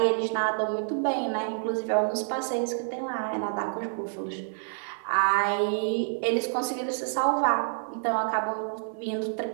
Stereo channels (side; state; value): left; silent; 59 dB below the other